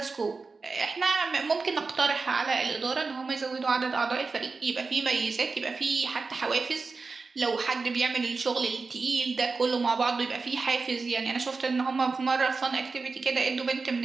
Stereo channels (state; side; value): quieter; left; 4.2 dB